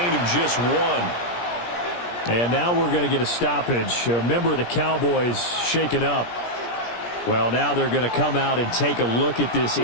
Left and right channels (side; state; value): right; late; 17 ms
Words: of just 1. And now we're going to get a stoppage. A member of the Cowboys shaken up. Well, now they're going to come out and take a look at this